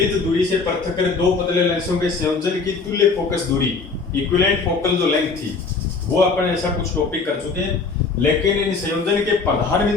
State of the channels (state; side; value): quieter; right; 4.4 dB